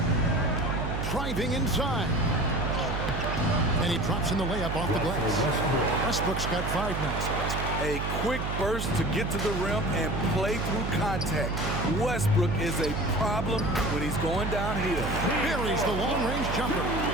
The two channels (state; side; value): noise; right; hum, 3 dB below the sound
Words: Driving inside. And he drops in the layup off the glass. Westbrook's got 5 now. A quick burst to get to the rim and play through contact. Westbrook is a problem when he's going downhill. Buries the long-range jumper.